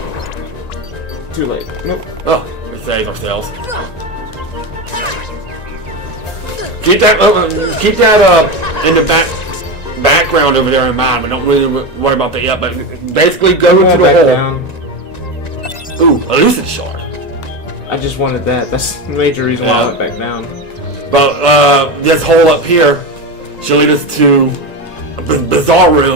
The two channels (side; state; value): right; late; 1.9 ms